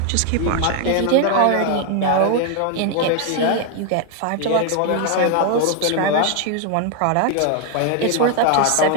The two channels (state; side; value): different; both; correlation 0.01